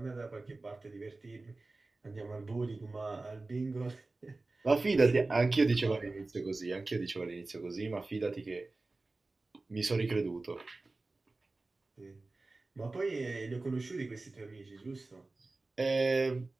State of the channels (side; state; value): left; quieter; 3.3 dB